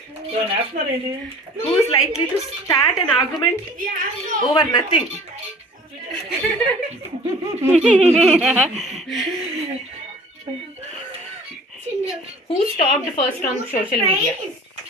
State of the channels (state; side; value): normal; both; correlation 0.47